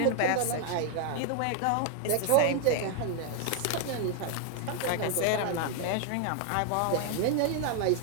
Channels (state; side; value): different; both; correlation 0.00